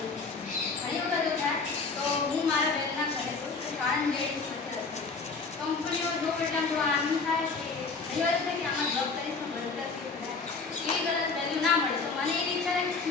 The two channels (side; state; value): right; quieter; 4.4 dB